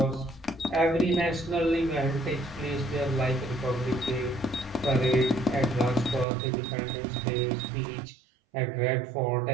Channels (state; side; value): drops out; left; at 6.2 s